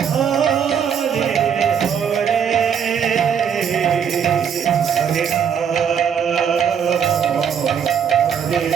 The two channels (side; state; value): left; quieter; 7.7 dB